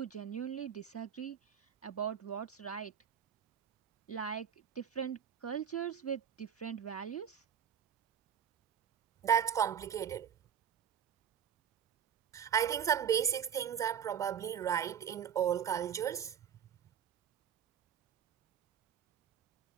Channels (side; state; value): left; quieter; 8.5 dB